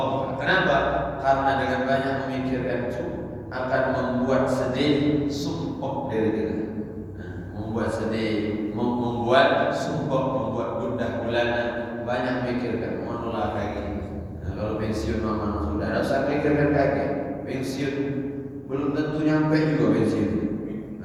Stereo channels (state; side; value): identical; both; correlation 1.00